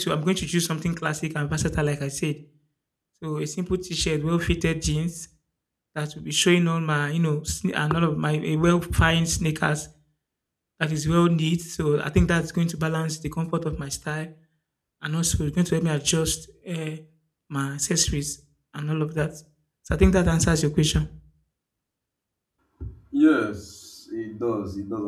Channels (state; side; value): identical; both; correlation 1.00